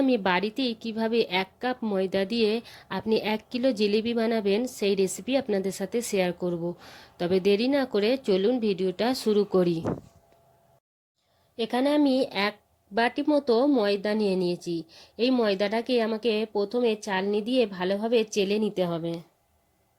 আমি বাড়িতেই কিভাবে 1 কাপ ময়দা দিয়ে আপনি 1 কিলো জিলিপি বানাবেন সেই রেসিপি আপনাদের সাথে শেয়ার করব। তবে দেরি না করে চলুন ভিডিওটা শুরু করি। এখানে আমি 1 বাটি মতো ময়দা নিয়ে নিয়েছি। এই ময়দাটাকে আমাকে প্রথমে চালনি দিয়ে ভালোভাবে চেলে নিতে হবে।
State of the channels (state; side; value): identical; both; correlation 1.00